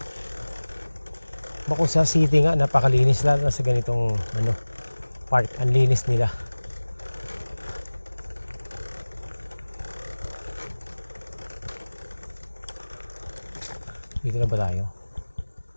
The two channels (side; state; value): both; inverted; correlation -1.00